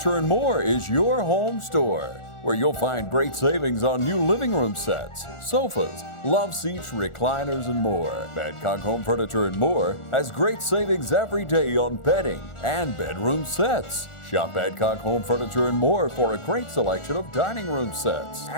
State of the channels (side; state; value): right; late; 1.4 ms